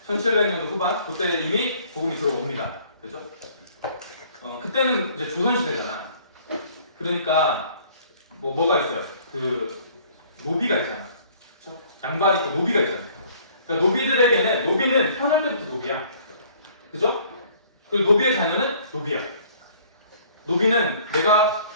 1700년도 후반, 그때 이미 복음이 들어옵니다. 그죠? 그때는 이제 조선시대잖아. 그러니까, 뭐가 있어요? 노비가 있잖아. 그죠? 양반 있고 노비가 있잖아요. 그러니까 노비는 태어날 때부터 노비야. 그죠? 그리고 노비의 자녀는 노비야. 노비는 내가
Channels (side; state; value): both; inverted; correlation -0.56